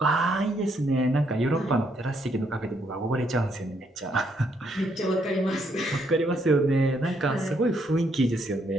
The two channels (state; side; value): normal; both; correlation 0.73